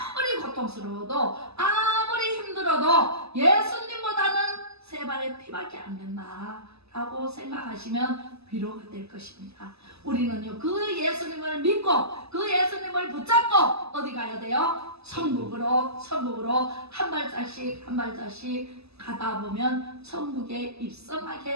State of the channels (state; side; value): late; left; 0.79 ms